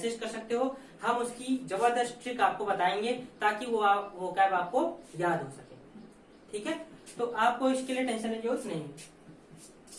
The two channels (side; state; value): both; identical; correlation 1.00